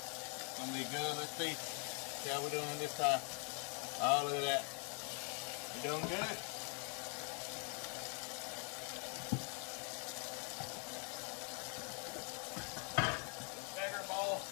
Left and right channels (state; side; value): quieter; right; 39.9 dB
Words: going to be good. Let's see how we're doing this time. Oh, look at that. We're doing good.